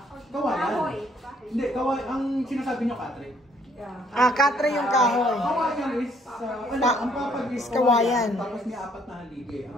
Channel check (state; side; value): normal; both; correlation 0.64